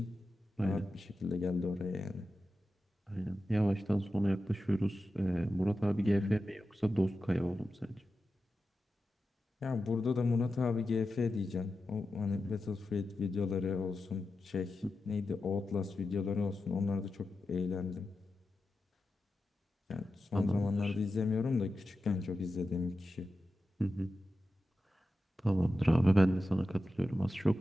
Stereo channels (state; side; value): normal; both; correlation 0.91